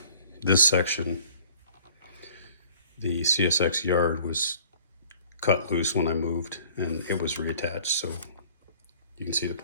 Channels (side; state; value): both; inverted; correlation -0.51